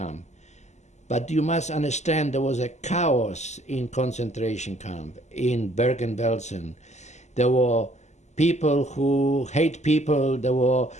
But you must understand there was a chaos in concentration camp in Bergen-Belsen. There were people who hate people. There were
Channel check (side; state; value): right; late; 0.33 ms